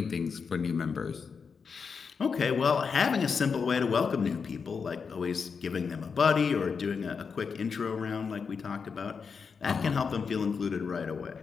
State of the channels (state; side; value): quieter; right; 5.7 dB